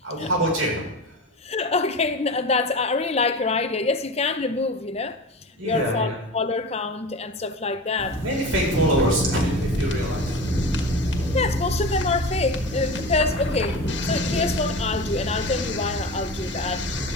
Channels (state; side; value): normal; both; correlation 0.29